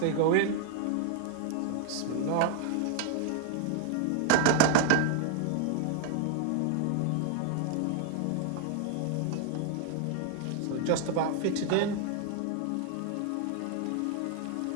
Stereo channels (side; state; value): both; different; correlation 0.00